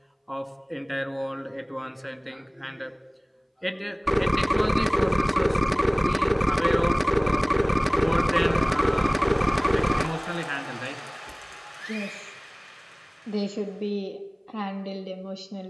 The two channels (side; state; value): both; identical; correlation 1.00